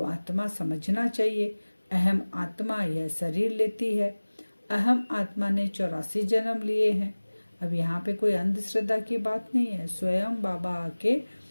आत्मा समझना चाहिए। अहम आत्मा यह शरीर लेती है। अहम आत्मा ने 84 जन्म लिए हैं। अब यहाँ पे कोई अंधश्रद्धा की बात नहीं है। स्वयं बाबा आके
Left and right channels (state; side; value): inverted; both; correlation -1.00